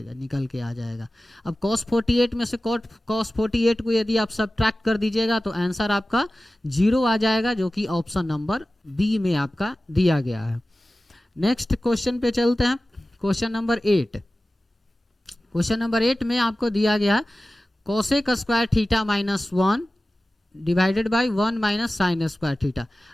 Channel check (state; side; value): normal; both; correlation 0.96